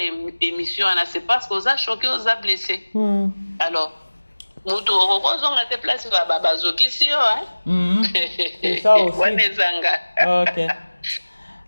na c'est parce que oza choqué, oza blessé. Alors mutu okozonga te place ba bazoki si yo C'est ça aussi. Wanezanga. OK.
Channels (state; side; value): inverted; both; correlation -1.00